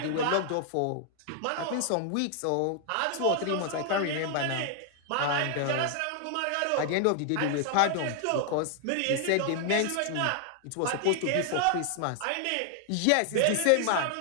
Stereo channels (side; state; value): both; different; correlation 0.00